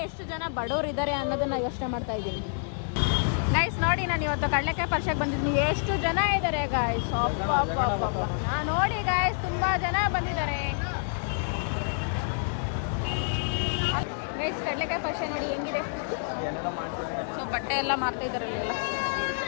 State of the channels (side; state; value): right; silent; digital silence